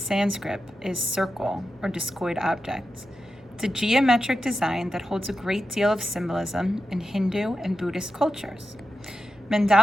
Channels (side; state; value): both; normal; correlation 0.90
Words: is circle or discoid object. It's a geometric design that holds a great deal of symbolism in Hindu and Buddhist cultures.